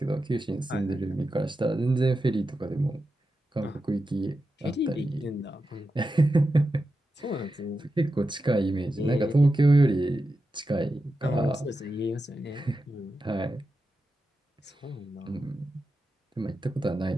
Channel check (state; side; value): normal; both; correlation 0.90